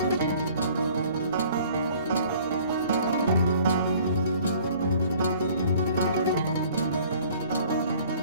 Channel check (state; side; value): inverted; both; correlation -0.53